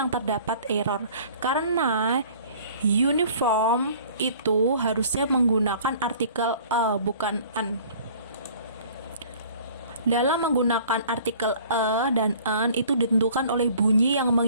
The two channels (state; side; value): inverted; both; correlation -0.51